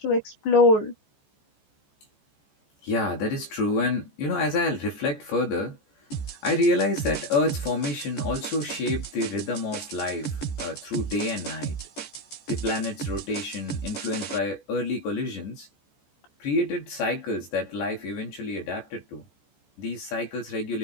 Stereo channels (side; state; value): right; late; 14 ms